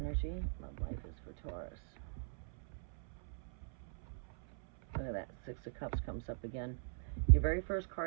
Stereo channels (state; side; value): silent; left; 51 dB below the other